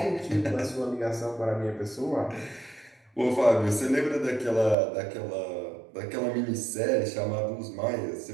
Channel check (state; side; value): drops out; left; at 4.8 s